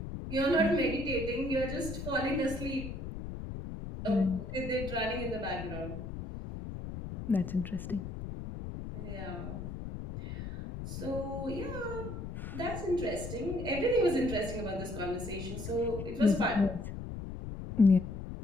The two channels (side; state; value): left; noise; rumble, 7 dB below the sound